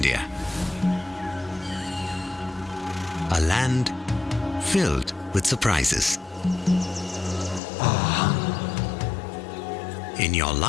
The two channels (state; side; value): drops out; right; at 7.6 s